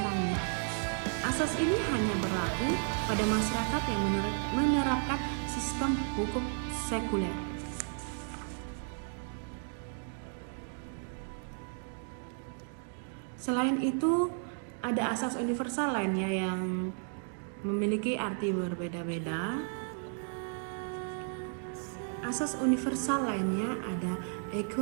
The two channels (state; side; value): silent; left; 55 dB below the other